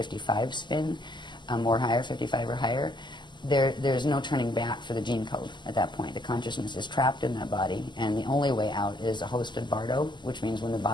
spin or higher, 55 or higher, there's no turning back for the gene code at that point. The consciousness is trapped in that body, and the only way out is a hosted bardo, which means when the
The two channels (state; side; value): late; right; 0.22 ms